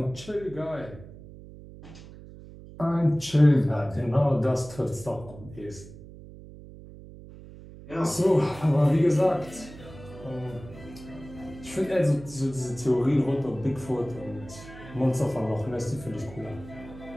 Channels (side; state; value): right; noise; hum, 17 dB below the sound